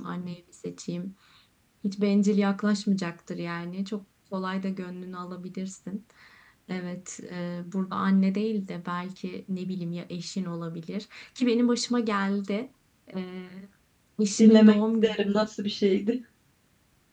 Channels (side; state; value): both; identical; correlation 1.00